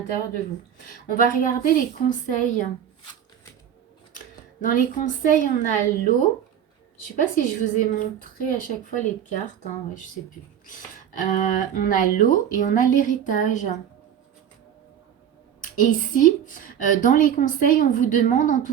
de vous. On va regarder les conseils. Dans les conseils, on a l'eau. Je ne sais pas si je vous ai montré à chaque fois les cartes. Hein, ouais, je ne sais plus. On a l'eau et on a l'héritage. Et ici, dans les conseils, on vous demande en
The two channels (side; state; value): left; quieter; 9.2 dB